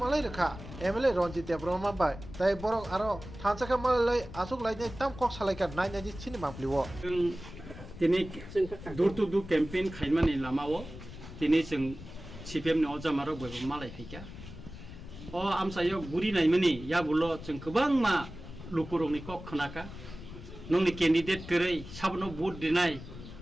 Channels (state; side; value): noise; left; rumble, 13 dB below the sound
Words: rekha MLA Ronjit Debroma bai tai borok aro thansaka malai asuk lainai tam kok salaikan nai naji chini mampliwo tini dur to dur campaign khaimani lamao tini jeng CPM ni ojamaro boibo malai phika o amsayo guri naimani yabulo jeng gobang ma lukurungni kok khanaka nongni candidate kerai sabno vote dinai